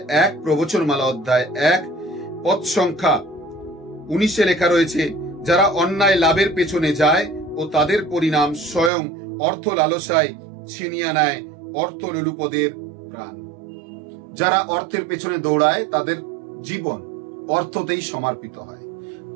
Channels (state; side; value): drops out; left; at 8.9 s